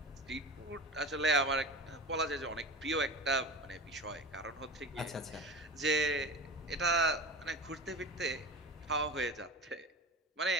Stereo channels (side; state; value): both; normal; correlation 0.31